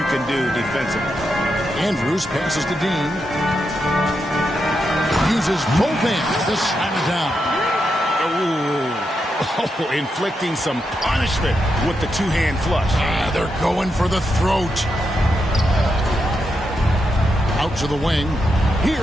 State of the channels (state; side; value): normal; both; correlation 0.84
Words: can do defensively. Andrews passes to Dean. Uses both hands to slam it down. Oh, inflicting some punishment with the two-hand flush. They're going for the throat. Out to the wing.